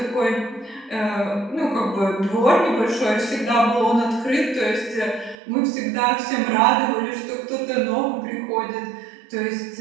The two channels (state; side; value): drops out; left; at 5.4 s